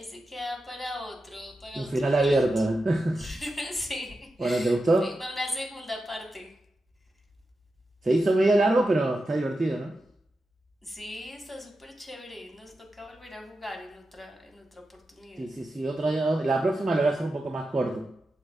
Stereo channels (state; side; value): normal; both; correlation 0.90